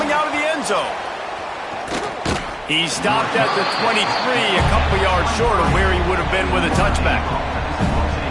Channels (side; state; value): both; identical; correlation 1.00